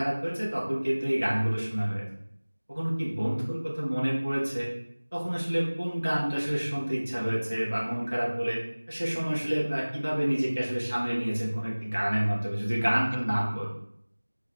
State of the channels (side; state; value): both; inverted; correlation -1.00